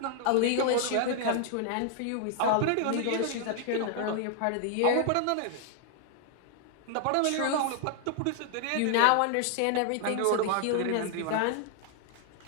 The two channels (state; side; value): different; both; correlation 0.00